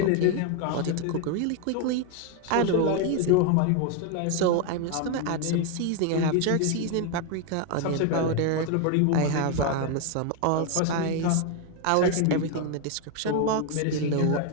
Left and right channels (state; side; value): different; both; correlation 0.01